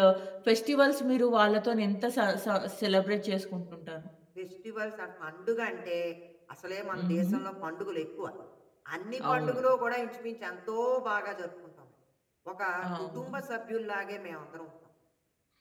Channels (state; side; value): identical; both; correlation 1.00